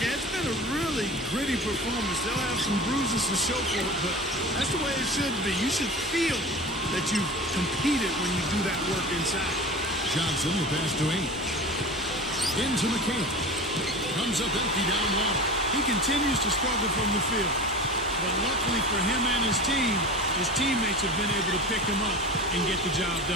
it's been a really gritty performance. They'll have some bruises to show for it, but that's the way it should be. You should feel that you've competed when you do that work inside. Johnson, the pass to Ainge. Into McHale. Comes up empty down low. He continues to struggle from the field. But luckily for him and his team, his teammates have been able to pick him up and get the job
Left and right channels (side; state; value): both; normal; correlation 0.34